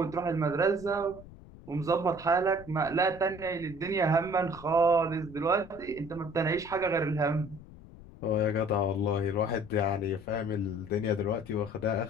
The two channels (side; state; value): left; noise; rumble, 18 dB below the sound